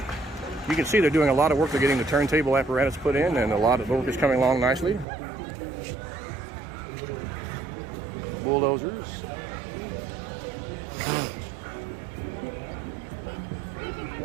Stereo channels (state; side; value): drops out; left; at 5.1 s